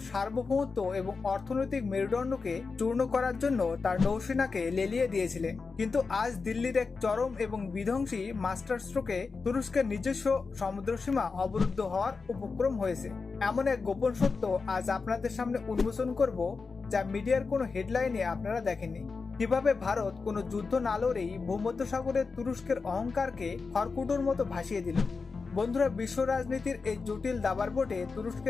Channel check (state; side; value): quieter; right; 4.6 dB